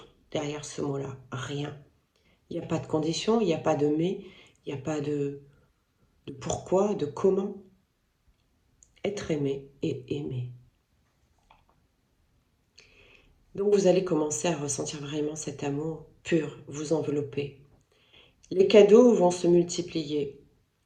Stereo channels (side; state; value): both; identical; correlation 1.00